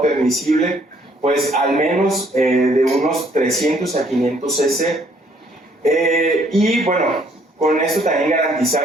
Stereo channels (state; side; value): normal; both; correlation 0.64